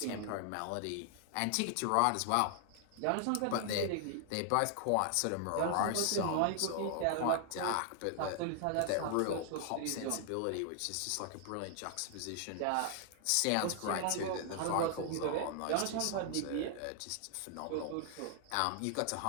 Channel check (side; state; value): both; different; correlation 0.00